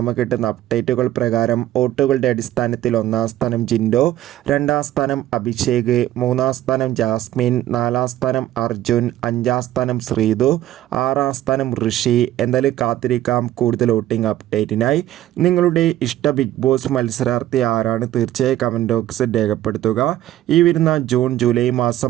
കിട്ടുന്ന അപ്ഡേറ്റുകൾ പ്രകാരം വോട്ടുകളുടെ അടിസ്ഥാനത്തിൽ 1-ാം സ്ഥാനം ജിൻഡോ, 2-ാം സ്ഥാനം അഭിഷേക്, 3-ാം സ്ഥാനം ജാസ്മിൻ, 4-ാം സ്ഥാനം അർജുൻ, 5-ാം സ്ഥാനം ശ്രീതു, 6-ാം സ്ഥാനം ഋഷി. എന്തായാലും കാത്തിരിക്കാം കൂടുതൽ വോട്ടിംഗ് അപ്ഡേറ്റിനായി. നിങ്ങളുടെ ഇഷ്ട ബിഗ് ബോസ് മത്സരാർത്ഥി ആരാണ്? തീർച്ചയായും കമൻറ്റ് ബോക്സിൽ രേഖപ്പെടുത്തുക. ഈ വരുന്ന ജൂൺ ജൂലൈ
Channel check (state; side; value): quieter; left; 13.8 dB